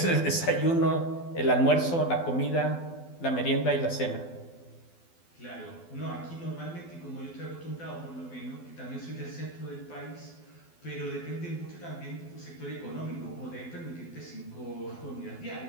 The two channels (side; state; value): right; late; 12 ms